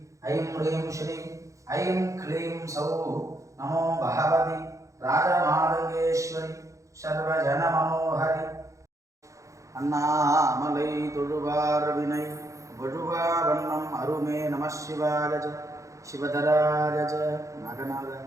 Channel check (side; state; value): left; late; 0.15 ms